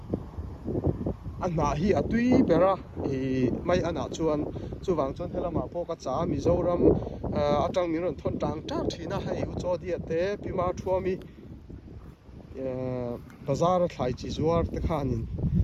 anna hi atui bera mai ana chuan chuwang chuan helama po ka cha Mizoram atang mi ron thon tang tak thina hei u cho dia te pima thuami bazar thlai chi zuar te khanin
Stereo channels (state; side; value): identical; both; correlation 1.00